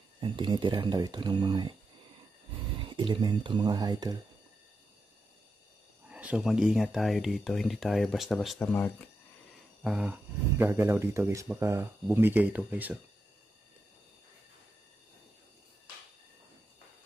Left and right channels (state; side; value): normal; both; correlation 0.87